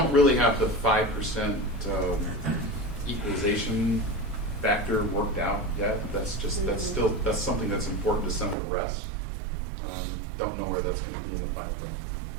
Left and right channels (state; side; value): drops out; left; at 8.6 s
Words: really have the 5% equalization factor worked out yet. That's something that's important to some of the rest. Don't know where that's going to be in the final bill.